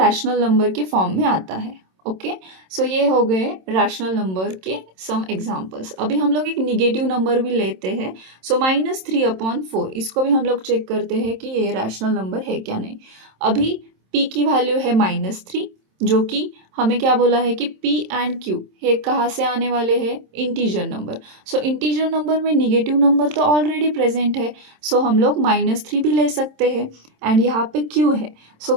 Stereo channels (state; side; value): late; left; 27 ms